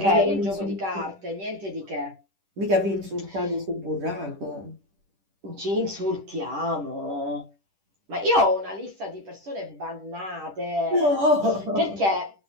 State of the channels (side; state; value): left; late; 10 ms